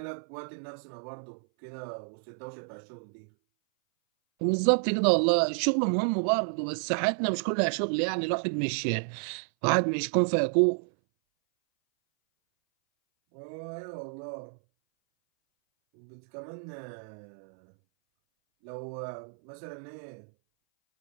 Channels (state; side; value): silent; left; 58 dB below the other